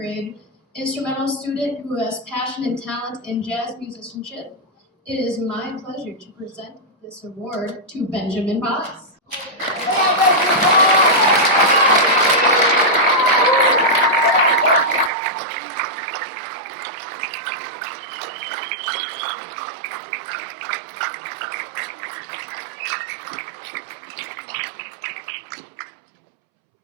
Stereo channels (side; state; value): left; drops out; at 15.1 s